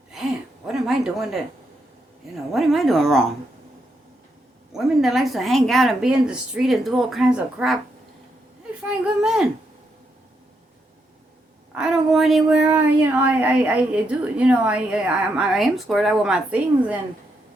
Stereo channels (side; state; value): both; normal; correlation 0.80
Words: Damn, what am I doing that? What am I doing wrong? Women that likes to hang out and be in the street and do all kinds of crap, they find good men. I don't go anywhere. I do. I am squared out with my things, and